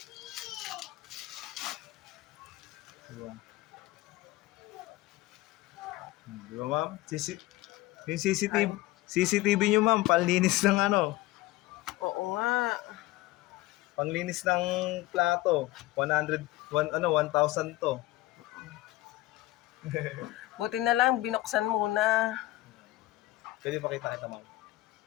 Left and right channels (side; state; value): right; quieter; 18.2 dB